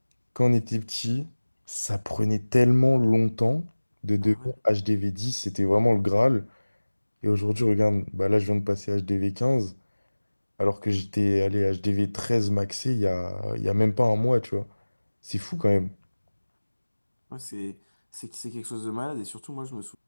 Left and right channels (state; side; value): inverted; both; correlation -1.00